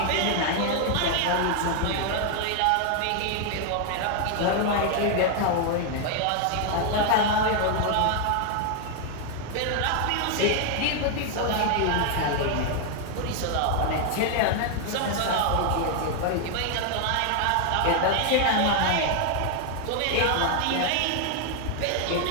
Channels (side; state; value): both; different; correlation 0.00